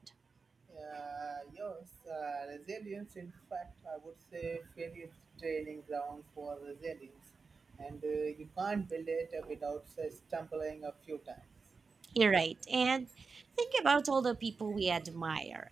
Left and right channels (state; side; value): quieter; left; 4.7 dB